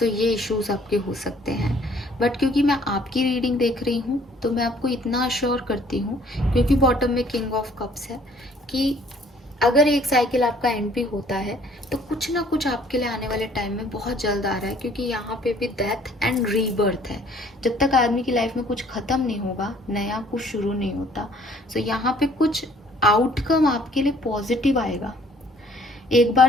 ये इश्यूज आपके हो सकते हैं, बट क्योंकि मैं आपकी रीडिंग देख रही हूँ तो मैं आपको इतना अश्योर करती हूँ, क्योंकि बॉटम में किंग ऑफ कप्स है, कि अगर एक साइकिल आपका एंड भी होता है तो कुछ ना कुछ आपके लिए आने वाले टाइम में बहुत जल्द आ रहा है, क्योंकि यहाँ पे भी डेथ एंड रीबर्थ है। जब तक आदमी की लाइफ में कुछ ख़त्म नहीं होगा, नया कुछ शुरू नहीं होता। सो यहाँ पे कुछ आउटकम आपके लिए पॉजिटिव आएगा। एक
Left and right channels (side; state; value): both; normal; correlation 0.58